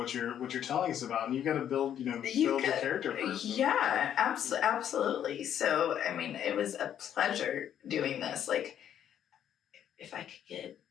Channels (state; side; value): quieter; right; 9.9 dB